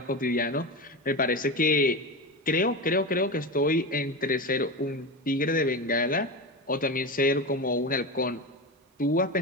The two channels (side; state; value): both; normal; correlation 0.21